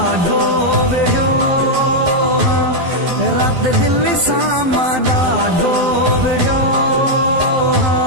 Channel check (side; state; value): left; late; 12 ms